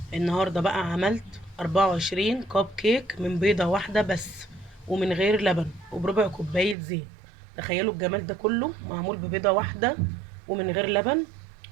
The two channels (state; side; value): drops out; left; at 6.8 s